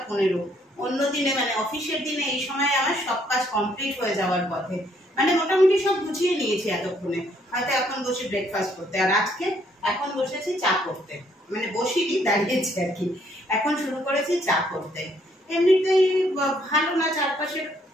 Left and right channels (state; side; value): normal; both; correlation 0.68